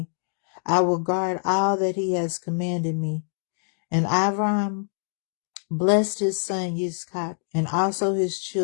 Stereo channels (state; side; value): silent; right; digital silence